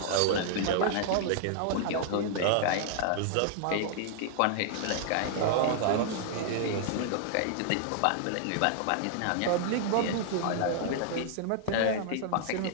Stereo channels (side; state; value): both; different; correlation -0.01